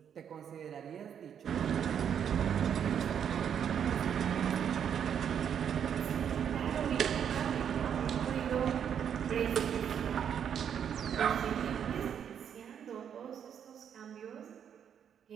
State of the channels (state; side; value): quieter; left; 8.4 dB